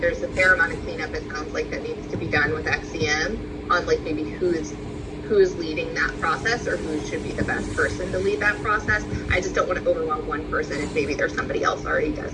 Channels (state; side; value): identical; both; correlation 1.00